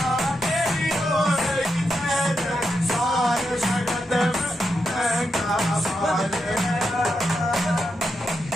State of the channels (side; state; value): both; normal; correlation 0.85